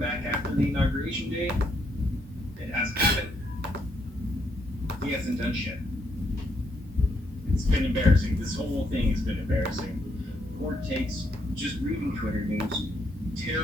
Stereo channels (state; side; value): normal; both; correlation 0.75